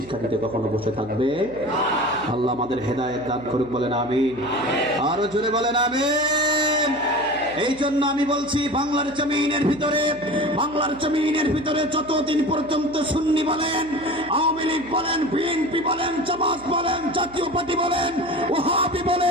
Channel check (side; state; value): right; noise; hum, 21 dB below the sound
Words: দিতে কখনো বসে থাকবে। আল্লাহ আমাদের হেদায়েত দান করুক, বলেন আমিন। আরো জোরে বলেন আমিন। এই জন্য আমি বলছি বাংলার জমিনের ভিতরে যতদিন পর্যন্ত সুন্নি বলেন, আওয়ামী লীগ বলেন, বিএনপি বলেন, জামাত বলেন, জাতীয় পার্টি বলেন, ওয়াহাবি